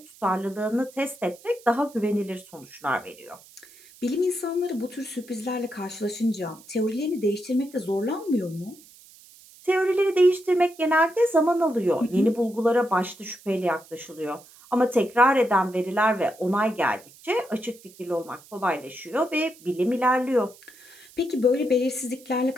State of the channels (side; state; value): right; noise; hiss, 23 dB below the sound